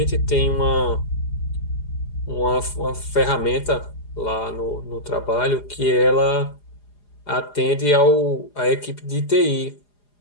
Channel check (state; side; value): late; right; 4.9 ms